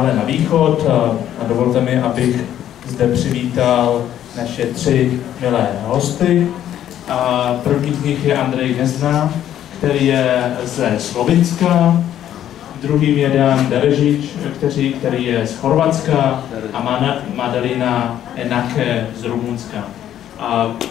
na východ a dovolte mi, abych zde přivítal naše tři milé hosty. A první z nich je Andrej Gnezda, který je ze Slovinska, druhým je Dan Derežič, který je z Chorvatska a Madalina Enake z Rumunska. A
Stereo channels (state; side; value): quieter; right; 11.2 dB